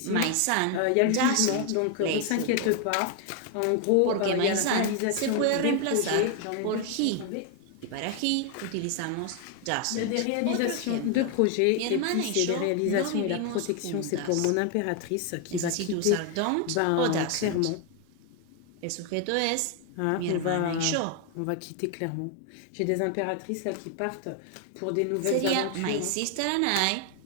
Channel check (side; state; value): both; different; correlation 0.01